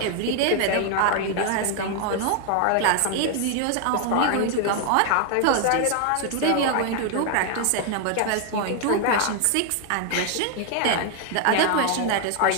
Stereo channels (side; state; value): both; different; correlation 0.00